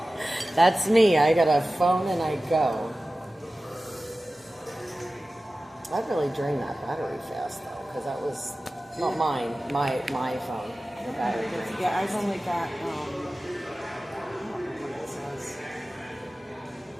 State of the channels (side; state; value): both; normal; correlation 0.96